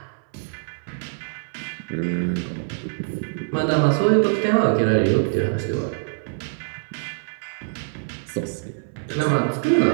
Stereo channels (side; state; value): left; silent; 63 dB below the other